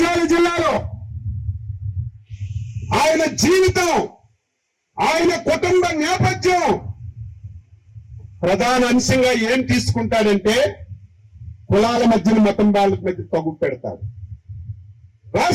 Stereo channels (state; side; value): identical; both; correlation 1.00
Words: జిల్లాలో ఆయన జీవితం, ఆయన కుటుంబ నేపథ్యం ప్రధాన అంశంగా ఏం తీసుకుంటాడంటే కులాల మధ్యన మతం వాళ్ళ మధ్య తగ్గు పెడతాడు.